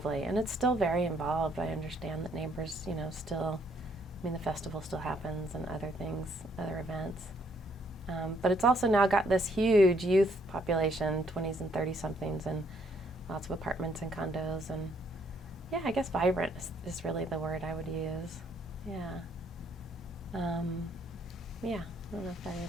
and it's still very involved. I understand that neighbors, still. The festival still happens and other things, other events. But it's also now got this huge youth population, 20s and 30-somethings, and lots of apartments and condos. And yeah, I guess vibrant is really the word I would use. Yeah. Yeah, I don't know if that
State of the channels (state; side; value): normal; both; correlation 0.68